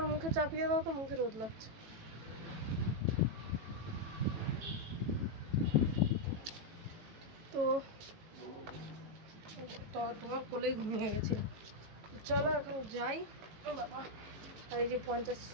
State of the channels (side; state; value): left; late; 18 ms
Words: মুখে চাপিয়ে দাও তো, মুখে রোদ লাগছে। তো তোমার কোলেই ঘুমিয়ে গেছি। চলো এখন যাই। বাবা, আর এই যে 50